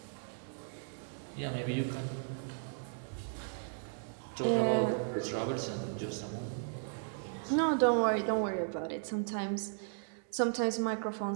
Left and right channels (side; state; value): left; silent; digital silence